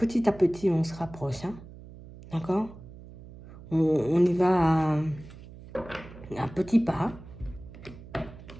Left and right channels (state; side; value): noise; right; hum, 17 dB below the sound